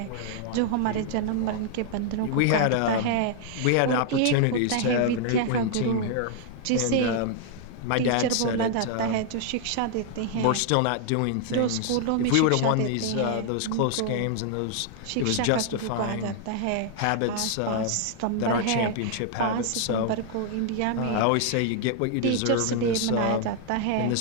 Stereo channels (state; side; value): different; both; correlation 0.00